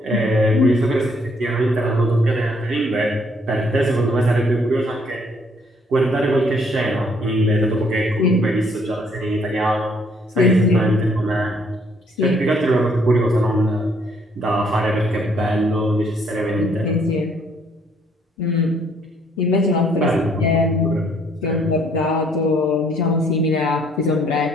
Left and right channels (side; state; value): both; normal; correlation 0.66